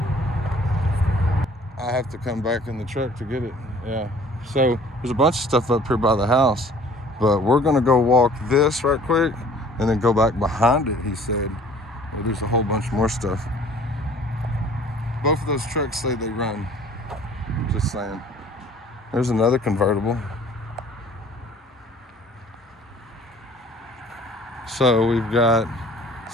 I have to come back in the truck to get it. Yeah. So there's a bunch of stuff up here by the house, but we're gonna go walk this right quick and then go back behind it, he said. Well, there's a whole bunch more stuff. Both of those trucks say they run. Just saying. There's another convertible. So we've got,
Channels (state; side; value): normal; both; correlation 0.52